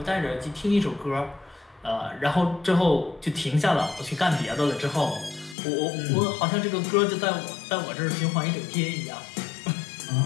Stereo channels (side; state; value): right; drops out; at 5.6 s